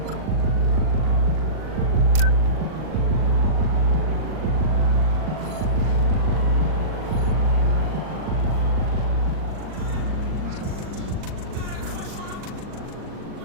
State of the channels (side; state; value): left; late; 39 ms